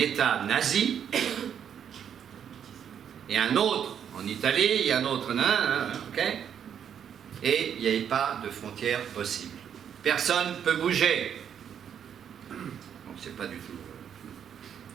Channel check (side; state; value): left; quieter; 8.5 dB